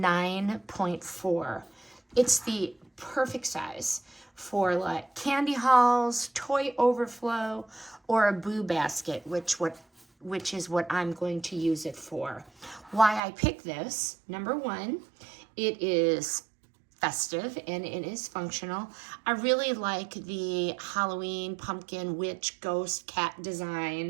It's the perfect size for like candy hauls, toy overflow, or a boo basket, which is what I'm going to use it for. Why I picked this, number one, it is festive and it is functional. I really like the Halloween pumpkin, witch, ghost, cat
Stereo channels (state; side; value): drops out; left; at 13.2 s